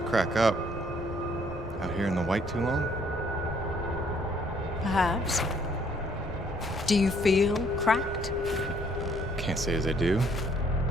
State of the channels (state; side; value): normal; both; correlation 0.64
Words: crack up. Out here in the white too long? Perhaps. Do you feel cracked? Can't say as I do.